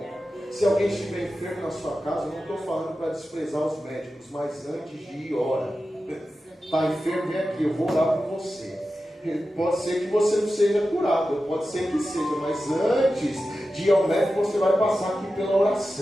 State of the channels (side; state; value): both; normal; correlation 0.93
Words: Se alguém estiver enfermo na sua casa, eu não estou falando para desprezar os médicos, mas antes de ir, ora. Está enfermo, vem aqui, eu vou orar por você. Pode ser que você não seja curado, pode ser que seja, mas antes de ir ao médico, você vai passar aqui pela